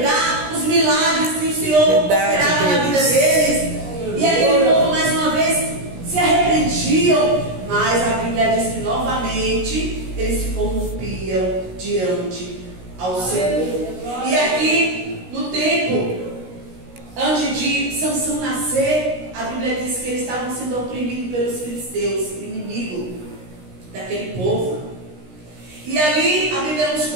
os milagres que o Senhor operava na vida deles. E aquele povo mais uma vez se arrependiam, mas a Bíblia diz que novamente eles se corrompiam diante ao Senhor. E aqui no tempo antes de Sansão nascer, a Bíblia diz que eles estavam sendo oprimidos pelos filisteus, o inimigo daquele povo. E ali a Bíblia nos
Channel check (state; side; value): late; left; 16 ms